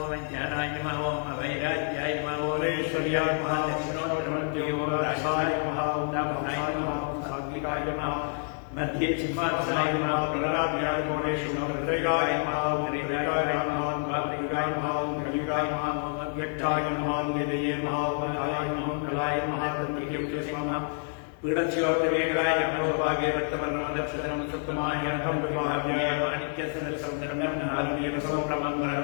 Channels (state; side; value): silent; right; 59 dB below the other